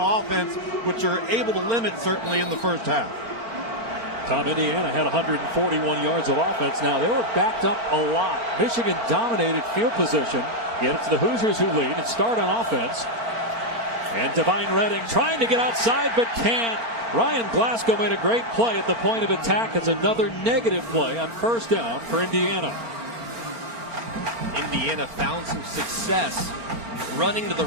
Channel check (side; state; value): left; late; 4.4 ms